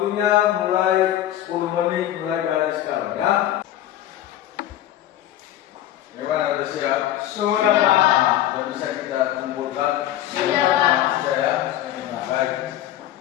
mulai 10 menit mulai dari sekarang, ya. Gimana, udah siap? Sudah, Pak. Sudah bisa kita kumpulkan? Sudah, Pak. Sudah, ya? Baik.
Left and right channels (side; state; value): right; quieter; 12.7 dB